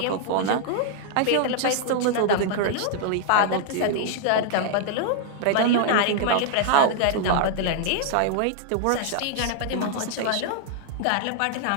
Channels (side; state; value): both; different; correlation 0.00